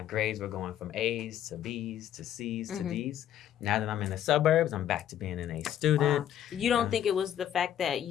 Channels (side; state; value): right; quieter; 10.9 dB